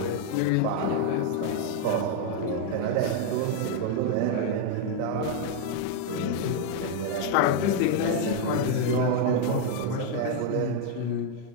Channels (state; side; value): different; both; correlation 0.00